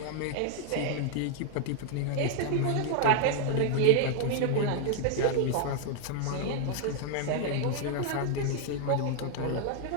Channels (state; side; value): different; both; correlation 0.00